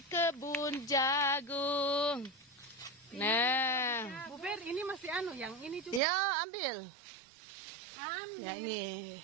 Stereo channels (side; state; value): left; drops out; at 6.0 s